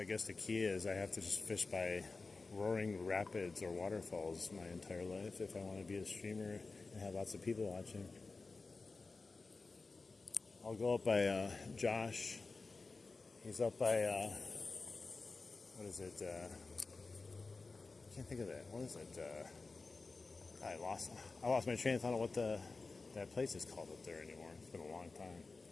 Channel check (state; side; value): quieter; right; 3.9 dB